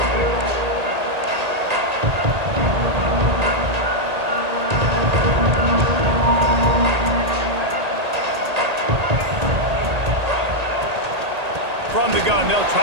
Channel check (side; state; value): left; late; 1.8 ms